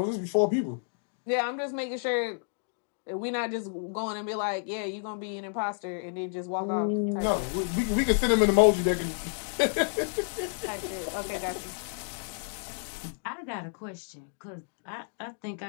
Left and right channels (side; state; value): right; silent; 58 dB below the other